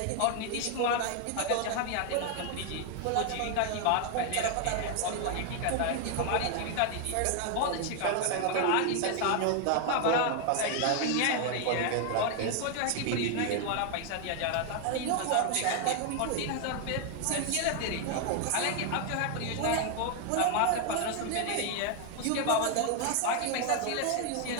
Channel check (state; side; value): different; both; correlation 0.00